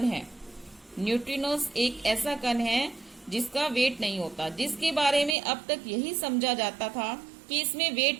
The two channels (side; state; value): left; drops out; at 5.4 s